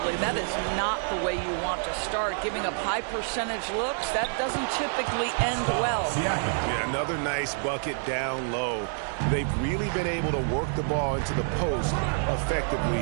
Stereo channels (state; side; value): silent; left; digital silence